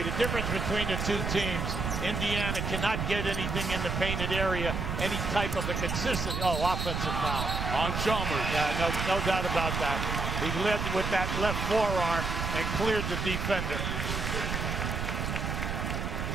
the difference between the two teams, Indiana cannot get anything in the painted area, any type of a consistent, offensive foul. On Chalmers. Yeah, no doubt about that. He led with that left forearm and cleared the defender.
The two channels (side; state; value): right; noise; rumble, 2 dB below the sound